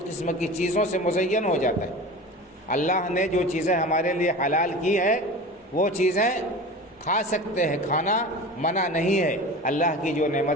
کی چیزوں سے مزین ہو جاتا ہے۔ اللہ نے جو چیزیں ہمارے لیے حلال کی ہے وہ چیزیں کھا سکتے ہیں، کھانا منع نہیں ہے۔ اللہ کی جو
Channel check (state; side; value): normal; both; correlation 0.34